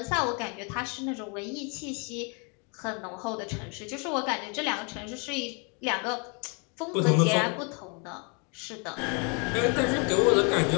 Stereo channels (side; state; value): right; quieter; 34.5 dB